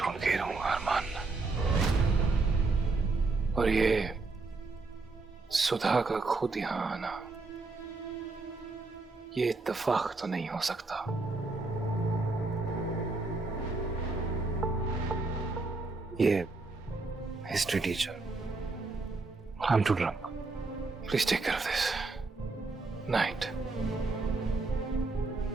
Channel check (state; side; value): quieter; left; 3.6 dB